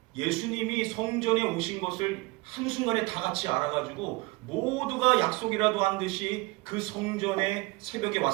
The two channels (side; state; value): left; quieter; 23.9 dB